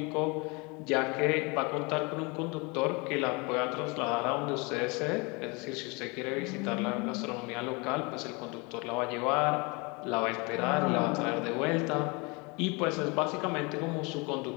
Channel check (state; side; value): quieter; right; 28.5 dB